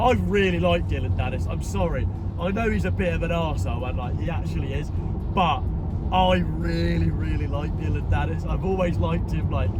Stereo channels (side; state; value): both; identical; correlation 1.00